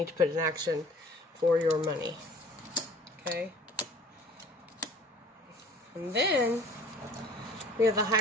to put in action for your money. Okay? And then we have the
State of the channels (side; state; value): both; normal; correlation 0.48